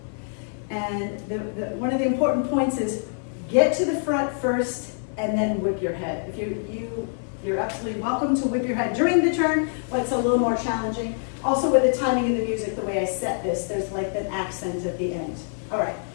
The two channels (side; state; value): right; silent; digital silence